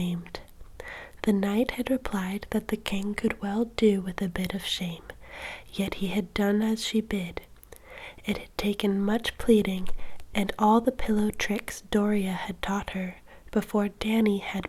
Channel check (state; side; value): identical; both; correlation 1.00